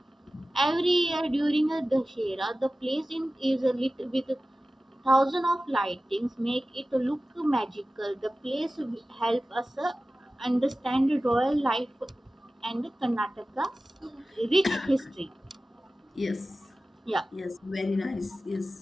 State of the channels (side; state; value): both; normal; correlation 0.95